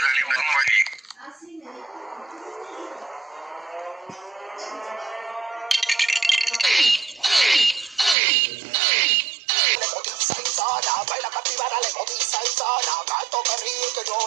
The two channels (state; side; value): drops out; left; at 8.2 s